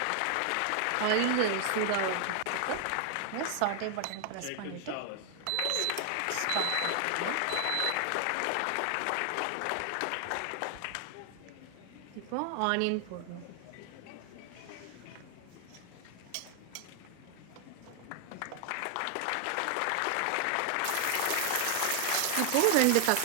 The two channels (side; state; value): both; different; correlation 0.00